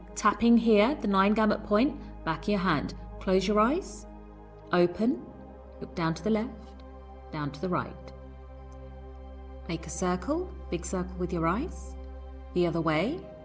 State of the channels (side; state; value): both; identical; correlation 1.00